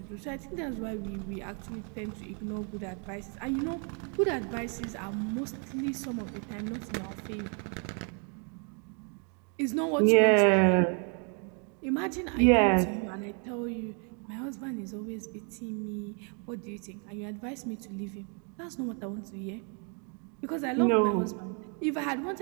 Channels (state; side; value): quieter; left; 38.7 dB